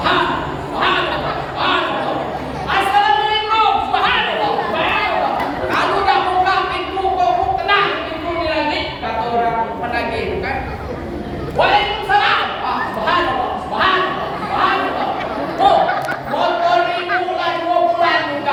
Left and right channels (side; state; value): both; identical; correlation 1.00